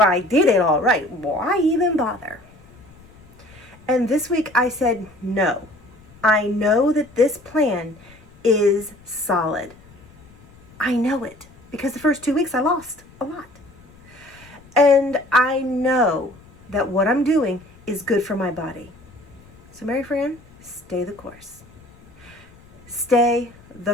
I did it all right. Why even bother? And this week I said, no. I know that this plan is solid. I know it. Because the first 2 weeks I lost a lot. And I know that what I'm doing is good for my body. So Mary Fran, stay the course. Stay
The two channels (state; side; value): noise; left; rumble, 25 dB below the sound